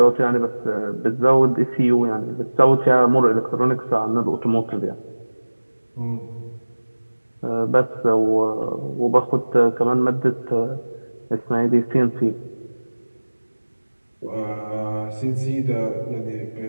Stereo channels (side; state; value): both; inverted; correlation -1.00